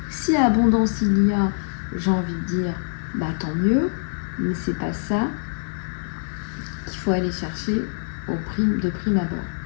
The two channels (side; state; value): right; silent; 63 dB below the other